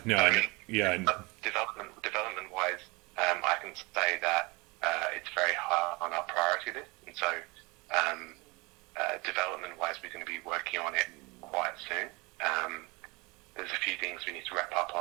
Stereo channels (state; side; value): quieter; left; 25.8 dB